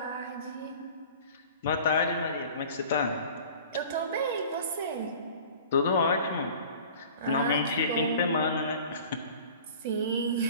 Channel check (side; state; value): both; inverted; correlation -0.44